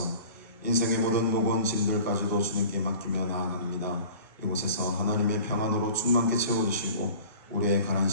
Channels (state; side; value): inverted; both; correlation -0.43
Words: 인생의 모든 무거운 짐들까지도 주님께 맡기며 나아갑니다. 이곳에서 하나님의 평안으로 충만케 채워주시고 우리의 가란